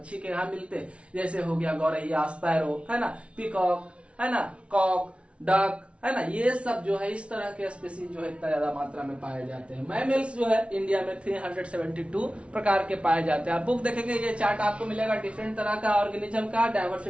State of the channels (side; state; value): left; late; 0.061 ms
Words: के यहाँ मिलते हैं। जैसे हो गया गौरैया, स्पैरो, है ना, पीकॉक, है ना, कॉक, डक, है ना, ये सब जो है इस तरह के स्पीसीज जो है इतना ज्यादा मात्रा में पाए जाते हैं। मैमल्स जो है इंडिया में 372 प्रकार के पाए जाते हैं। आप बुक देखेंगे ये चार्ट आपको मिलेगा, डिफरेंट तरह का ऑर्गेनिज्म का